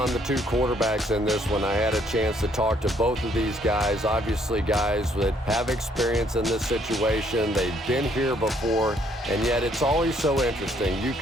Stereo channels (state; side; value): normal; both; correlation 0.67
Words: the two quarterbacks in this one. I had a chance to talk to both of these guys, obviously guys that have experience in this situation. They've been here before, and yet it's always so interesting. You